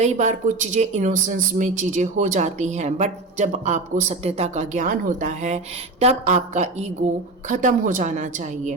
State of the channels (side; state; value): left; quieter; 3.2 dB